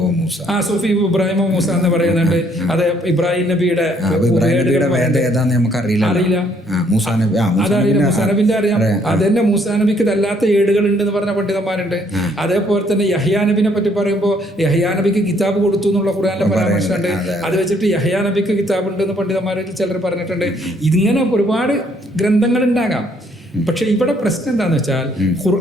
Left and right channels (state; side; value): normal; both; correlation 0.66